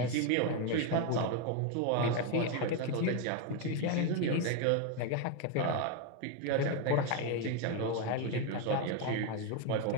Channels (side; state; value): both; different; correlation 0.02